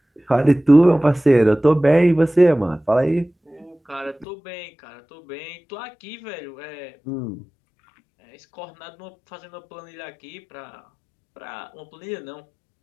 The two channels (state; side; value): drops out; right; at 4.2 s